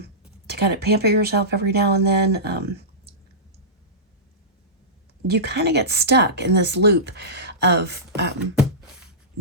kind of pamper yourself every now and then, you kind of get stuck in this loop of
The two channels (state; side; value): normal; both; correlation -0.17